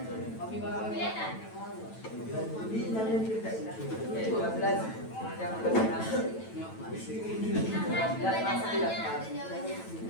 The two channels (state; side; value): late; right; 9.1 ms